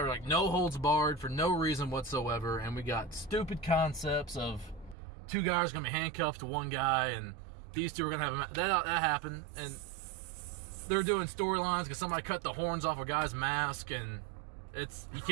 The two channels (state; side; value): drops out; left; at 5.0 s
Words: are like no holds barred for no reason whatsoever, and we got stupid concepts of two guys going to be handcuffed to one guy, and these two are going to have a match. That happened, and they're doing storylines because somebody cut the horns off a guy's mask, and it's, you